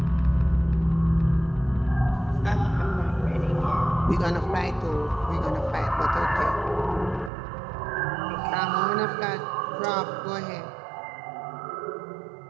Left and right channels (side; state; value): left; drops out; at 7.3 s